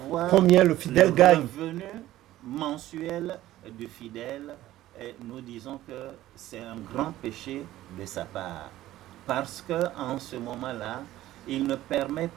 combien le fidèle gagne. Le revenu mensuel du fidèle, et nous disons que c'est un grand péché de sa part. Parce qu'en ce moment-là, il ne permet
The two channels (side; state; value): left; quieter; 14.8 dB